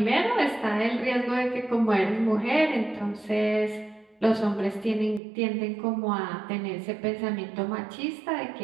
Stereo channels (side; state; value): left; drops out; at 5.2 s